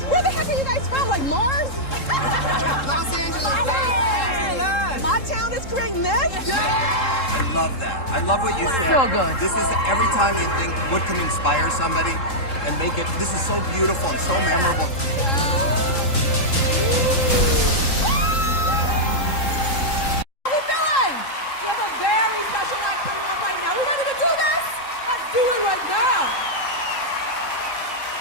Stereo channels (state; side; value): late; right; 3.7 ms